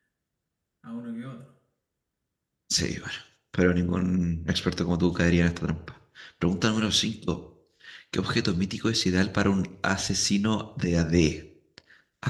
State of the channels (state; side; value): identical; both; correlation 1.00